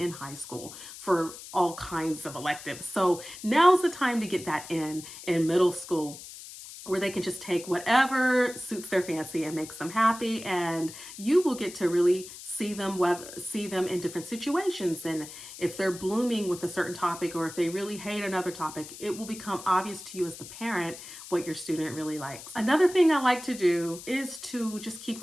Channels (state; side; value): noise; left; hiss, 14 dB below the sound